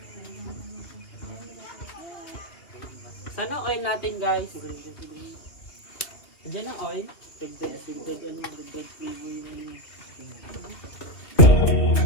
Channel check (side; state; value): right; late; 2.6 ms